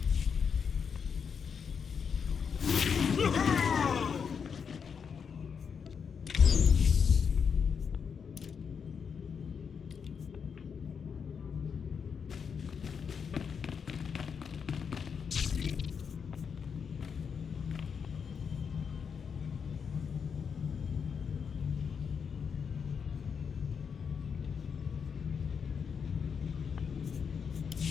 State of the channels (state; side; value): quieter; right; 6.5 dB